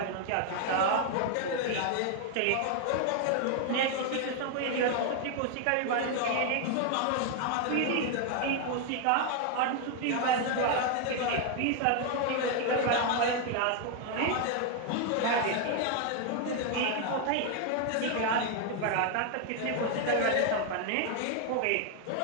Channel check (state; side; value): different; both; correlation 0.00